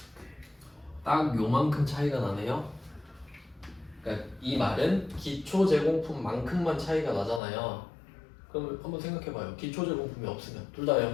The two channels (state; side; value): drops out; right; at 7.4 s